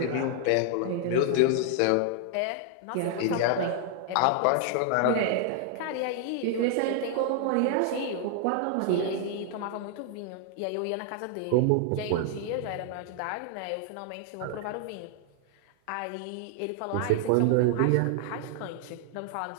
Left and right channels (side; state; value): both; different; correlation 0.00